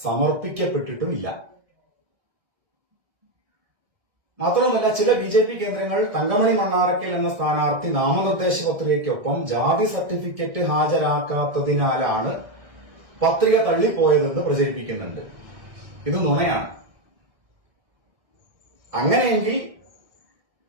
സമർപ്പിക്കപ്പെട്ടിട്ടുമില്ല. മാത്രമല്ല, ചില ബിജെപി കേന്ദ്രങ്ങൾ തങ്കമണി മണ്ണാറക്കൽ എന്ന സ്ഥാനാർത്ഥി നാമനിർദ്ദേശ പത്രികയ്ക്കൊപ്പം ജാതി സർട്ടിഫിക്കറ്റ് ഹാജരാക്കാത്തതിനാലാണ് പത്രിക തള്ളിപ്പോയതെന്ന് പ്രചരിപ്പിക്കുന്നുണ്ട്. ഇത് നുണയാണ്. അങ്ങനെയെങ്കിൽ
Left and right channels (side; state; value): left; late; 1.7 ms